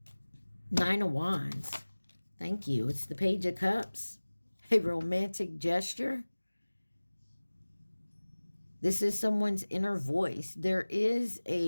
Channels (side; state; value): both; inverted; correlation -1.00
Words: of Wands. Thank you. It's the Page of Cups. A romantic gesture. This is someone's inner voice. There is